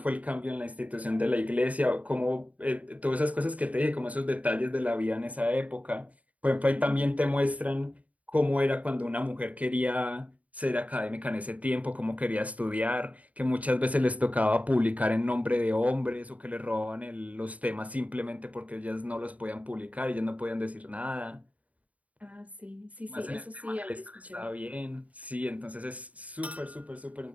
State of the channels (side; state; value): left; late; 0.070 ms